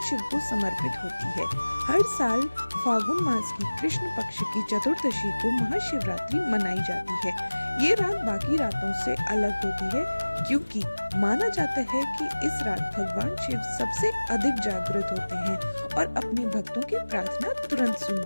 शिव को समर्पित होती है। हर साल फागुन मास की कृष्ण पक्ष की चतुर्दशी को महाशिवरात्रि मनाई जाती है। ये रात बाकी रातों से अलग होती है क्योंकि माना जाता है कि इस रात भगवान शिव सबसे अधिक जागृत होते हैं और अपने भक्तों की प्रार्थना तुरंत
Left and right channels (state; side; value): inverted; both; correlation -1.00